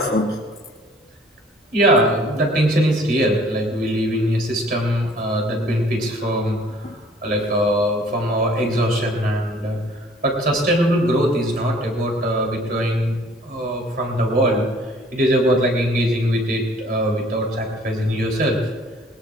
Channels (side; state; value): both; normal; correlation 0.55